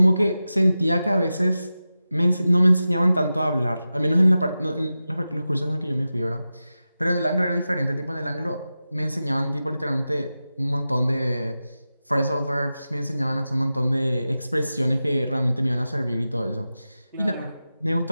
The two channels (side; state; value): both; inverted; correlation -0.93